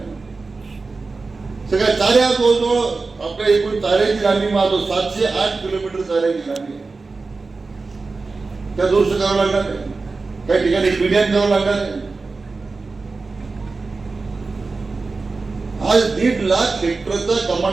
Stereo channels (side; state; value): left; quieter; 4.0 dB